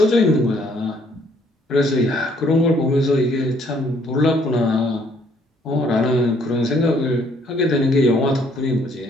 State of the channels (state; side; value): normal; both; correlation 0.64